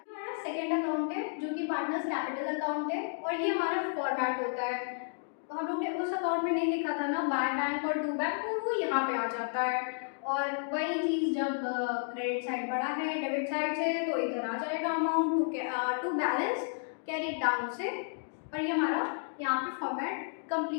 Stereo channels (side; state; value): right; silent; digital silence